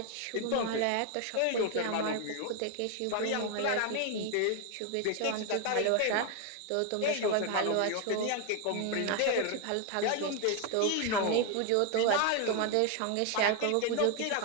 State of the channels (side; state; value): both; different; correlation 0.01